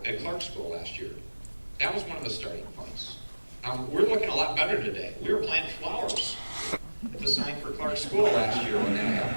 at Clark School last year. That was one of the starting points. We're looking a lot better today. We were planting flowers at the sign for Clark School last year when that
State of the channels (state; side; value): inverted; both; correlation -1.00